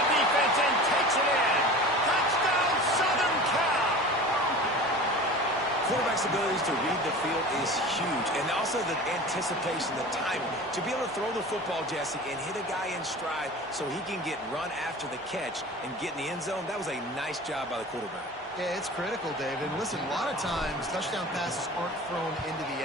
defense and takes it in. Touchdown, Southern Cal. Quarterback's abilities to read the field is huge, and also the anticipation, the timing. To be able to throw the football, Jesse, and hit a guy in stride so he can get run after the catch and get in the end zone, that was a nice job by the quarterback. Yeah, it's critical, David. Listen, a lot of times touchdown passes aren't thrown into the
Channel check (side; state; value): both; normal; correlation 0.37